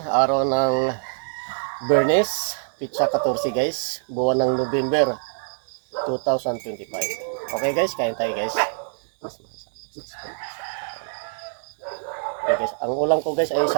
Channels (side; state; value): left; silent; digital silence